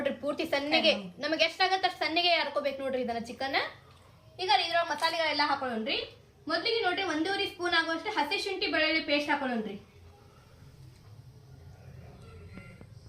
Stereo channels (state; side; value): identical; both; correlation 1.00